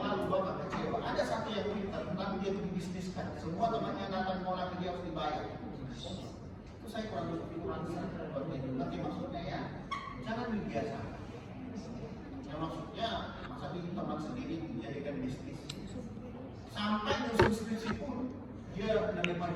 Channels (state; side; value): identical; both; correlation 1.00